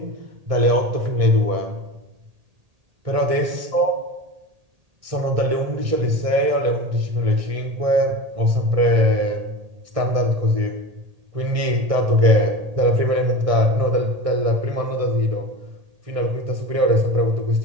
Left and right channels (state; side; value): late; left; 1.6 ms